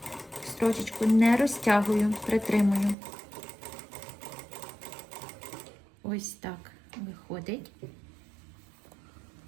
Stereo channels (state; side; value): drops out; left; at 3.0 s